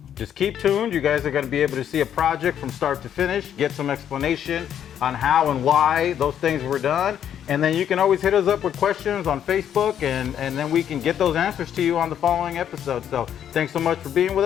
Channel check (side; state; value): right; quieter; 9.6 dB